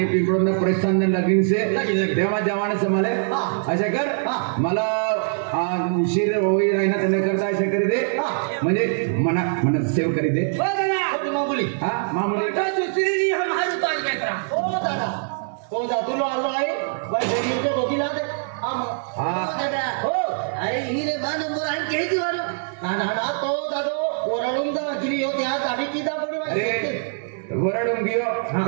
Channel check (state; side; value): silent; left; 63 dB below the other